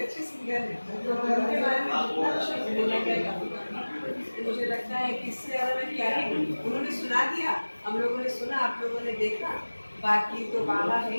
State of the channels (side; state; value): both; inverted; correlation -1.00